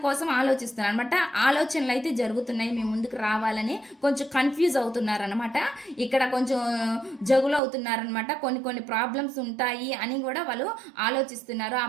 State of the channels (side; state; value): left; drops out; at 7.6 s